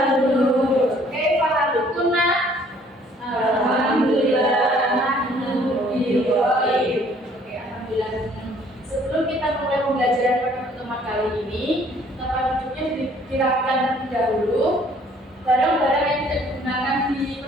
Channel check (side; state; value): both; normal; correlation 0.59